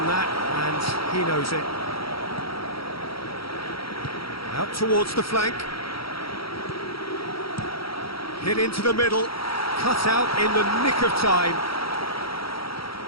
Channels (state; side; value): late; right; 0.75 ms